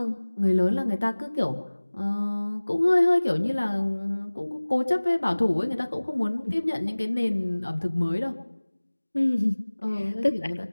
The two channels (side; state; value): both; inverted; correlation -1.00